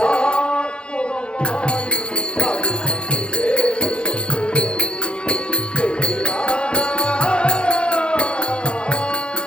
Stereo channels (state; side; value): late; right; 0.054 ms